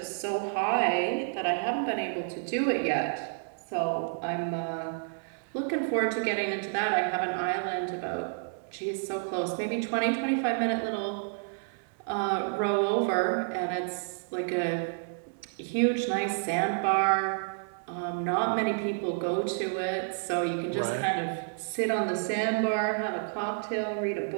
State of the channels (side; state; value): left; silent; 58 dB below the other